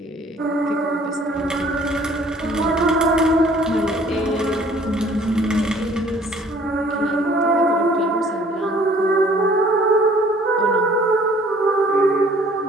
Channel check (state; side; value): normal; both; correlation 0.55